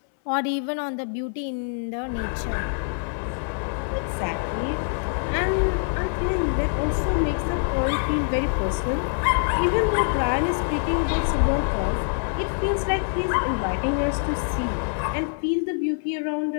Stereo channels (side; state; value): right; silent; 61 dB below the other